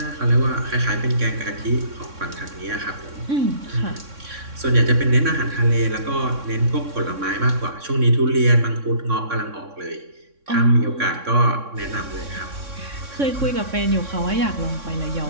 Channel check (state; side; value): late; left; 3.6 ms